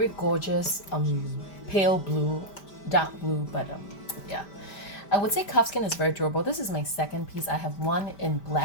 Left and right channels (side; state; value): right; late; 5.1 ms